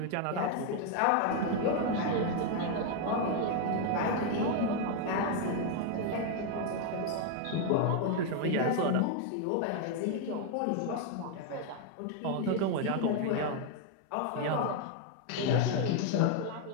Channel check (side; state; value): both; different; correlation 0.01